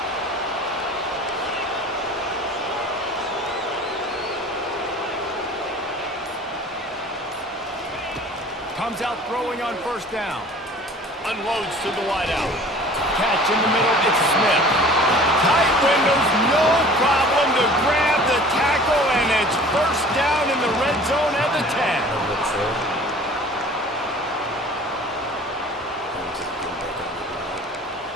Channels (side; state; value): both; normal; correlation 0.46